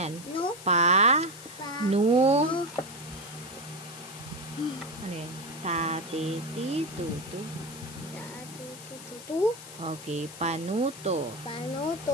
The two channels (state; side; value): noise; left; hiss, 15 dB below the sound